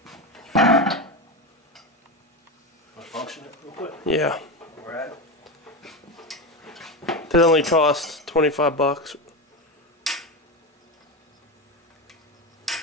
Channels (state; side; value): normal; both; correlation 0.17